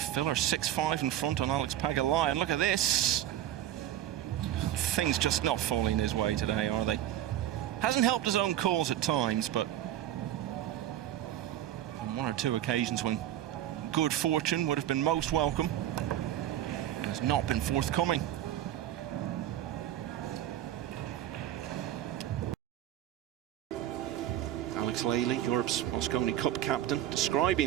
6-5 in front on Alex Pagulayan. Look at this. Things just not falling his way today, are they? Hasn't helped his own cause at times, but on one or two occasions when good fortune would have been most welcome, it has not been forthcoming. Alex Lely, Europe's Mosconi Cup captain,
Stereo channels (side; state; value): left; quieter; 12.3 dB